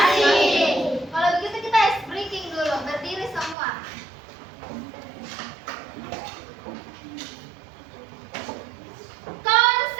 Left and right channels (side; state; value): left; drops out; at 3.6 s